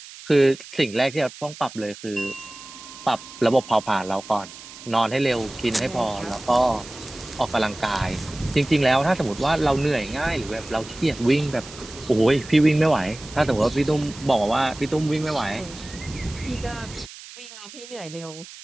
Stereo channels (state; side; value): noise; right; hiss, 16 dB below the sound